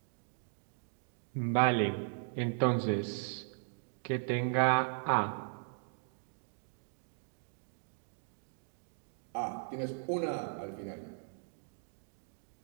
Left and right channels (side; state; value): left; silent; digital silence